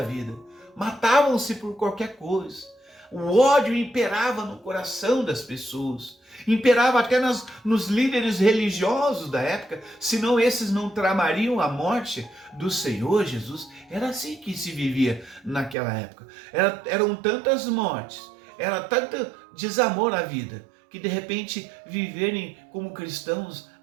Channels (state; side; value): drops out; left; at 15.8 s